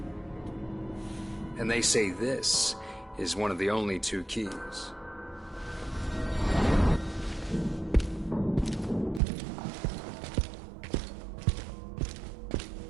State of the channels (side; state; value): left; drops out; at 9.2 s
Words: And they say this is one of the only two keys.